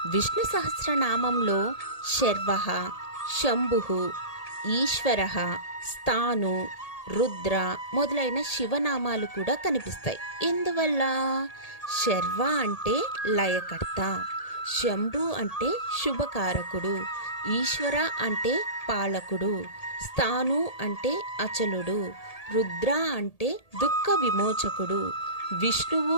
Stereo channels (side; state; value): right; late; 1.8 ms